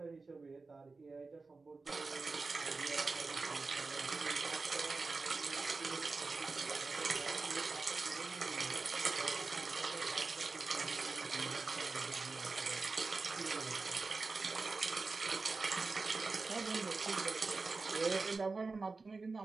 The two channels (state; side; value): quieter; left; 4.0 dB